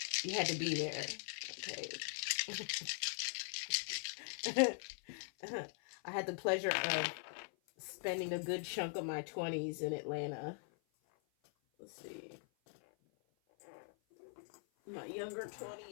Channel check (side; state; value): right; silent; 50 dB below the other